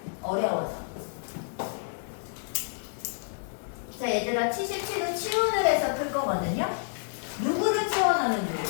어려워서. 자 얘들아 77은 치원을 해서 풀 거거든요. 누구를 치원하면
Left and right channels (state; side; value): silent; right; digital silence